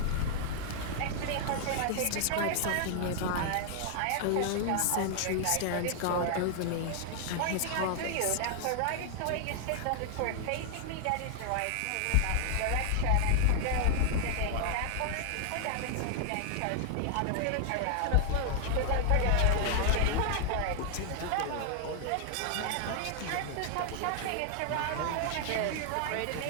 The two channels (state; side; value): different; both; correlation 0.00